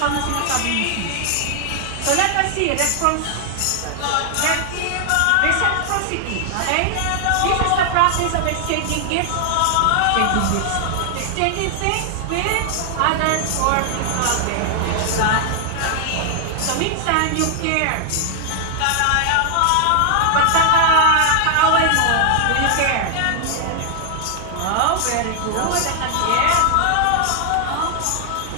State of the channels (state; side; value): different; both; correlation 0.00